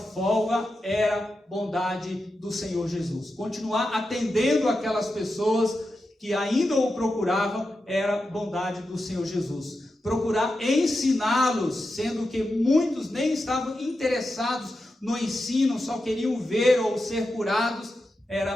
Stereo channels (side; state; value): both; normal; correlation 0.89